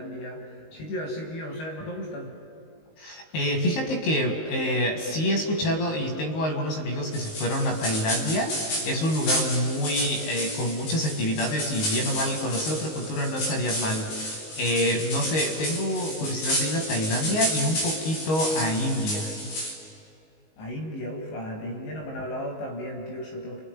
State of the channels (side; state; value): right; late; 19 ms